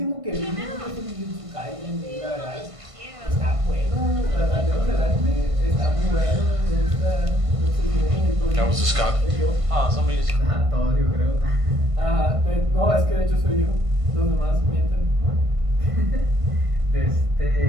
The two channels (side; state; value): left; late; 1.5 ms